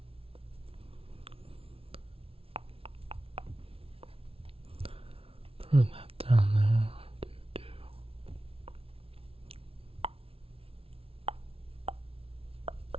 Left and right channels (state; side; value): late; left; 0.27 ms